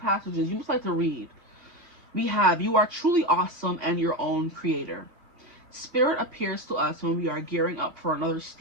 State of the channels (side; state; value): left; late; 2.6 ms